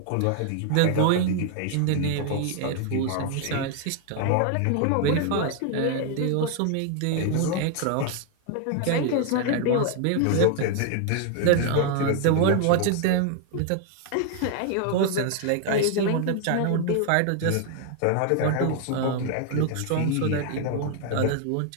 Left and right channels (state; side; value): different; both; correlation 0.00